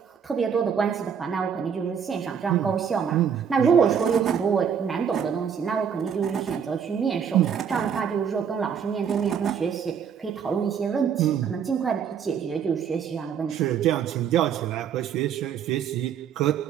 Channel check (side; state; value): left; quieter; 7.5 dB